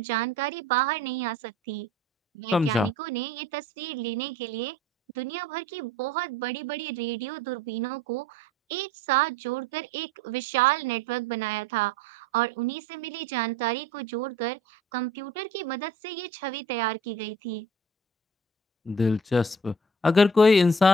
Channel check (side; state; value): both; normal; correlation 0.49